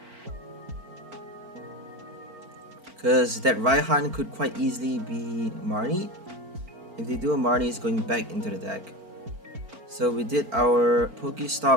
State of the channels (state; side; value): late; left; 4.4 ms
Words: Because that Raihan could quite easily be Marnie. If they do a Marnie, it's going back into the deck. So we did our